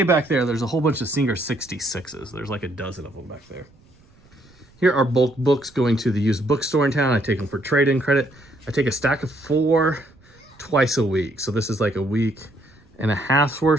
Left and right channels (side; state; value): right; noise; rumble, 29 dB below the sound